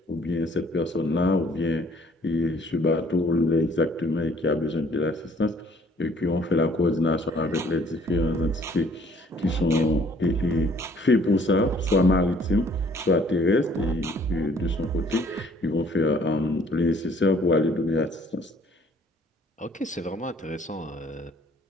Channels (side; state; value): both; normal; correlation 0.59